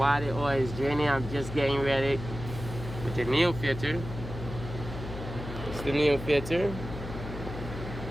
the oil is draining, I'm just getting ready with the new filter. It's the new filter.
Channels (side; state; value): left; noise; hum, 9 dB below the sound